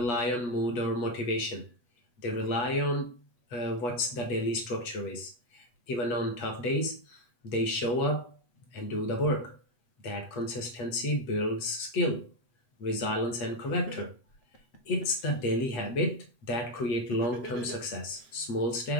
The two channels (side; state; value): right; late; 8.1 ms